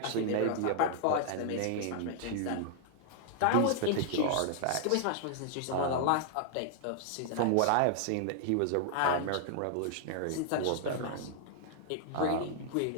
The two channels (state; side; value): different; both; correlation -0.01